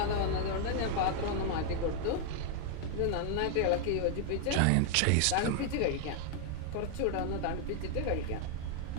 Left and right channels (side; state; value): both; different; correlation 0.00